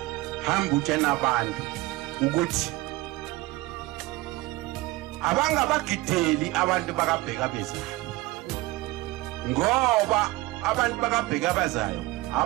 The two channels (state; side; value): quieter; left; 20.1 dB